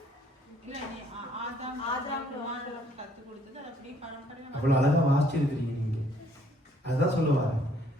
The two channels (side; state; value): both; normal; correlation 0.64